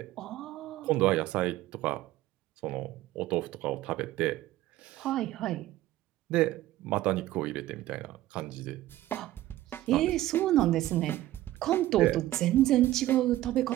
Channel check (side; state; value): left; quieter; 15.1 dB